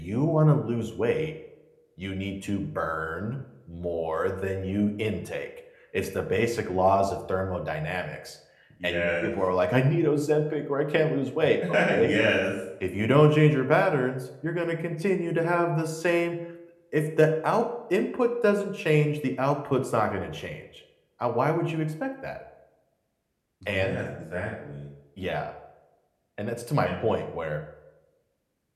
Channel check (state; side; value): identical; both; correlation 1.00